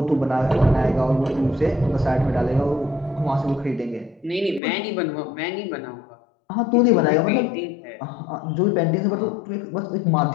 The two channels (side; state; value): right; drops out; at 4.6 s